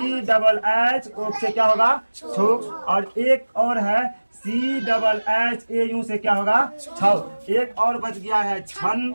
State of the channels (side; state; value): both; inverted; correlation -1.00